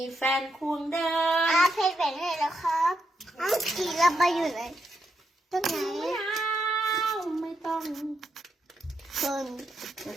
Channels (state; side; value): normal; both; correlation 0.82